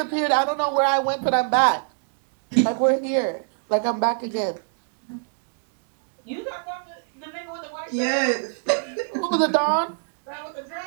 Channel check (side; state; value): left; silent; digital silence